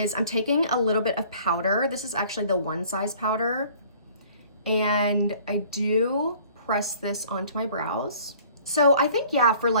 I'm taking a little bit of powder. This is actually the One Size powder, And I do press this onto my brows. So I think, yeah, for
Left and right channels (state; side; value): inverted; both; correlation -0.53